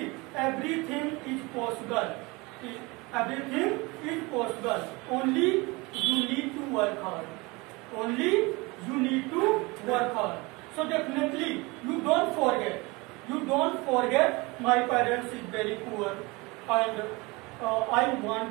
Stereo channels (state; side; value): quieter; left; 24.9 dB